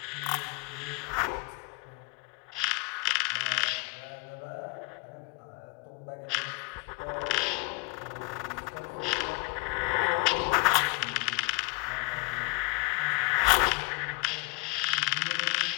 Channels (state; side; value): quieter; right; 26.8 dB